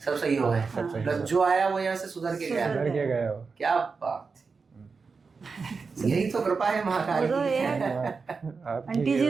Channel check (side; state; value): left; quieter; 4.8 dB